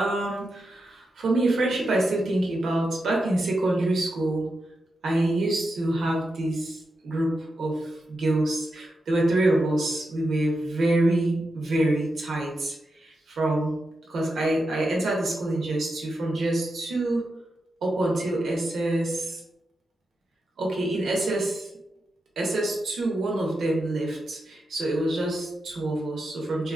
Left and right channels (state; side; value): normal; both; correlation 0.88